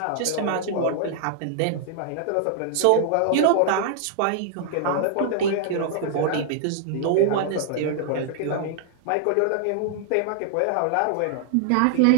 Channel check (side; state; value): both; different; correlation -0.01